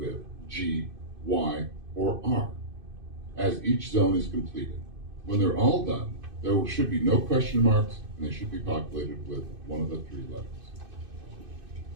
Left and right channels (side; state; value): left; late; 2.6 ms